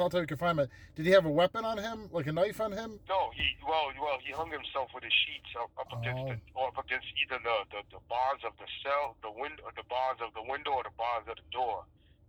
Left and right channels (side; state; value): both; identical; correlation 1.00